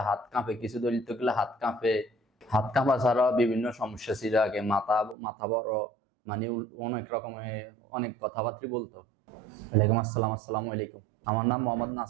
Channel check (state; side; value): drops out; left; at 5.2 s